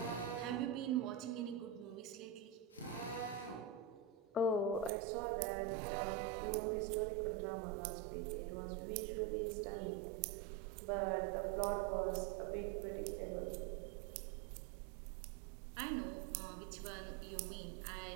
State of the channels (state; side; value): drops out; left; at 4.9 s